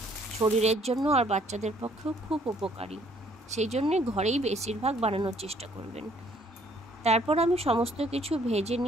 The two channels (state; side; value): normal; both; correlation 0.63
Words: শরীরের জন্য আর বাচ্চাদের পক্ষেও খুব উপকারী। সেই জন্যে ঘরেই বেশিরভাগ বানানোর চেষ্টা করবেন। তারপর আমি সমস্ত কিছু ভেজে